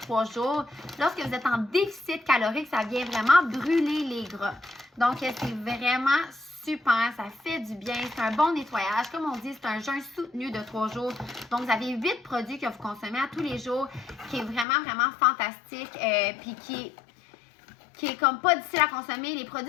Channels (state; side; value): drops out; right; at 14.7 s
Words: jours, lorsque vous êtes en déficit calorique, ça vient vraiment brûler les gras. Donc, c'est vraiment super, ça fait du bien, c'est un bon nettoyage. Comme on dit, c'est un jeûne soutenu de 3 jours. Donc, vous avez 8 produits que vous consommez à tous les jours, qui est vraiment, vraiment fantastique, puis qui est comme pas difficile à consommer. Les